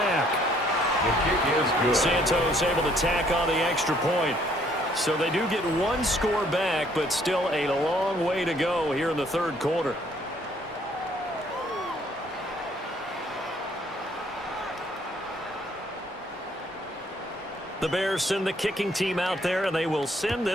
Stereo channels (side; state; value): both; normal; correlation 0.64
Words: The kick is good. Santos able to tack on the extra point. So they do get 1 score back, but still a long way to go here in the 3rd quarter. The Bears send the kicking team out there, and they will send